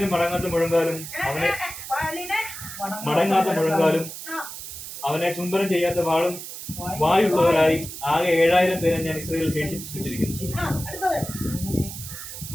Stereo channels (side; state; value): right; noise; hiss, 10 dB below the sound